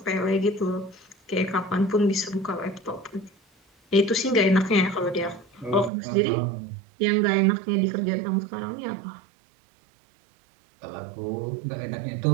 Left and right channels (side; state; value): left; drops out; at 5.9 s